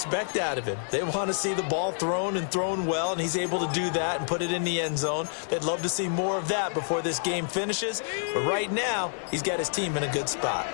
out of him. They want to see the ball thrown and thrown well, and he's able to do that and put it in the end zone. They'd love to see more of that before this game finishes, but right now, he's got his team in a good spot.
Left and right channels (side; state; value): right; silent; digital silence